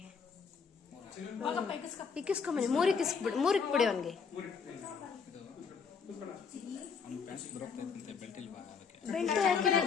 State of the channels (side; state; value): right; quieter; 5.8 dB